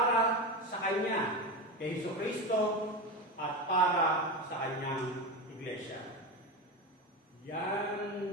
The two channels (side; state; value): both; normal; correlation 0.19